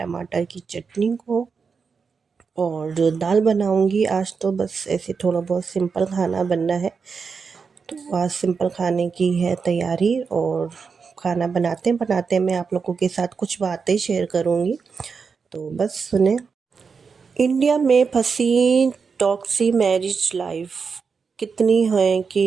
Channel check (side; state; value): left; quieter; 5.4 dB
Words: की चटनी को और दाल बनाऊंगी। आज तो बस ऐसे थोड़ा बहुत सिंपल खाना बनना है, तो आज सिंपल खाने की है तैयारी। और खाना बनाते बनाते मैं आप लोगों के साथ कुछ बातें शेयर करूंगी, तो बस सुने। इंडिया में फंसी टॉक्सी मैरिज लाइफ कितनी है